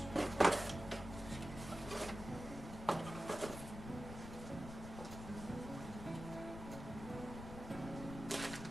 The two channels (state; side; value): noise; left; rumble, 9 dB below the sound